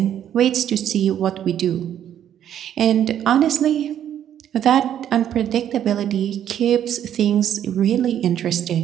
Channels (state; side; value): quieter; left; 10.3 dB